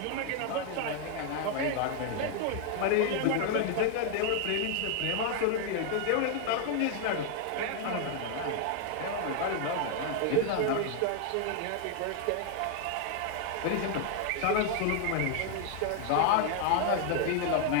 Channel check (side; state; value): both; different; correlation 0.00